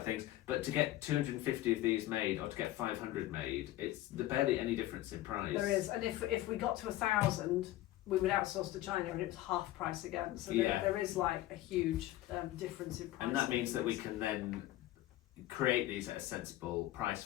things, but to get 250 of these made or to get 500 made, it's barely any difference in price. There is, and if we got to 1,000, we would outsource to China and it was half price again. So there is like a huge difference in price. And that means that we can then create these at a sensible price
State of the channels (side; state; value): right; quieter; 15.5 dB